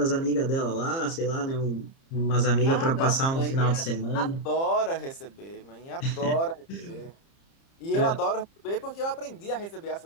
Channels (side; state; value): right; late; 30 ms